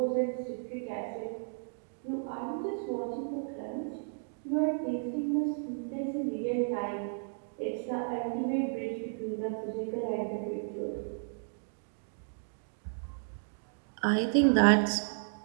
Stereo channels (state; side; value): silent; left; digital silence